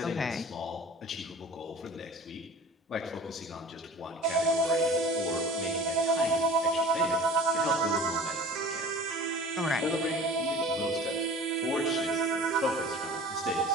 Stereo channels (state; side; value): normal; both; correlation 0.43